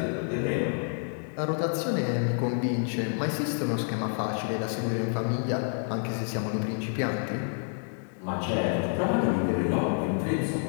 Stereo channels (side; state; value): right; silent; 59 dB below the other